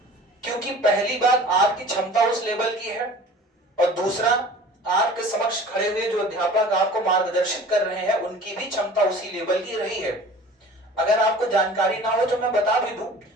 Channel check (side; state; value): both; normal; correlation 0.44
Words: क्योंकि पहली बात, आपकी क्षमता उस लेवल की है, और दूसरा, आपके समक्ष खड़े हुए जो अध्यापक आपको मार्गदर्शित कर रहे हैं उनकी भी क्षमता उसी लेवल की रही है। अगर आपको जानकारी ना हो तो मैं बता भी दूं,